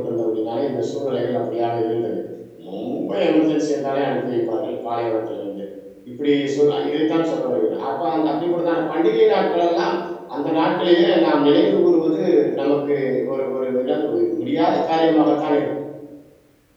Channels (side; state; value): both; identical; correlation 1.00